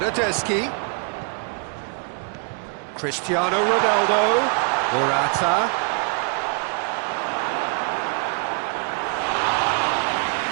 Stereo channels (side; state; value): left; quieter; 38.2 dB